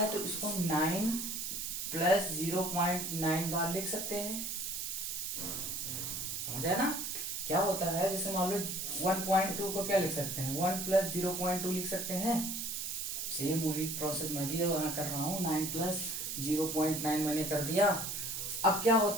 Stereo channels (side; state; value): right; noise; hiss, 4 dB below the sound